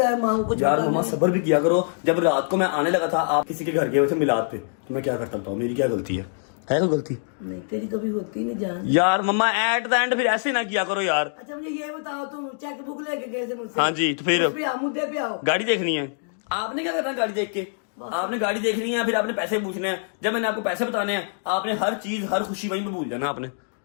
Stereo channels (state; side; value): silent; right; digital silence